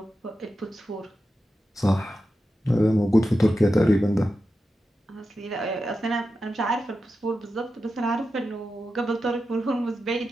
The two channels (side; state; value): both; normal; correlation 0.90